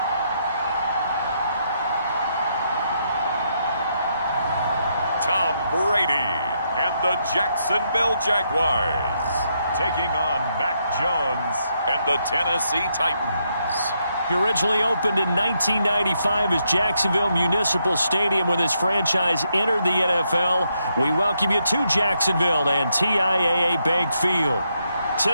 Tom Brady and the Jacksonville Jaguars taking on Mac Jones and the Tennessee Titans. He originally opened in 1995 as Jacksonville Municipal Stadium when this franchise entered the NFL. We welcome you to Jacksonville and TIAA Bank Field.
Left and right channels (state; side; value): inverted; both; correlation -0.78